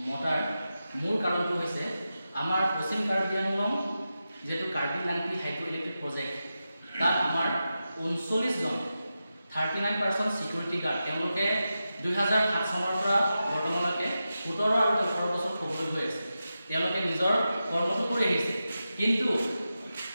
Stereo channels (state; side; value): inverted; both; correlation -0.91